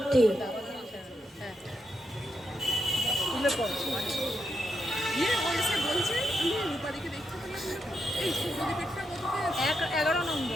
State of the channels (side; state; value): both; normal; correlation 0.83